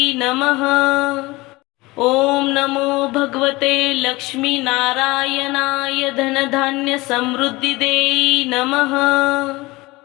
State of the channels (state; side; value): quieter; right; 21.6 dB